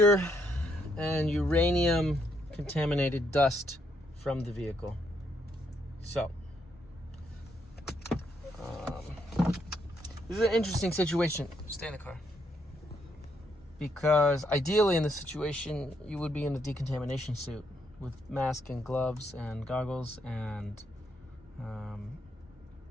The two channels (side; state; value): both; normal; correlation 0.75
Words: and uranium contaminated dust from the vehicle. So, this is an interesting situation. Stay in the car. Because ideally in this situation, you would be in a decontamination suit with mask and gloves and goggles, and